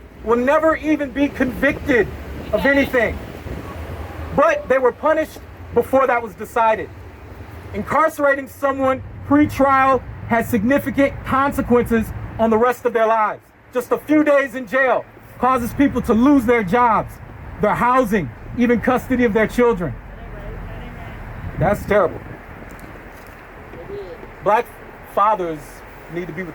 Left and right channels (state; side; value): identical; both; correlation 1.00